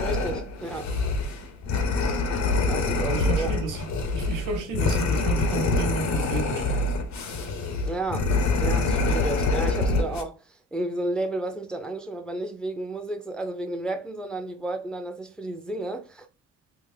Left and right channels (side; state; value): both; normal; correlation 0.42